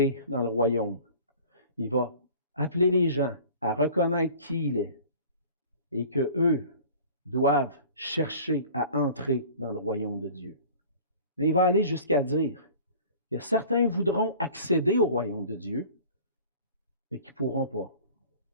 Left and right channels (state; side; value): inverted; both; correlation -0.45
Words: dans le royaume. Il va appeler les gens à reconnaître qui il est et qu'eux doivent chercher à entrer dans le royaume de Dieu. Mais il va aller jusqu'à dire que certains voudront accéder au royaume de Dieu, mais qui ne pourront pas.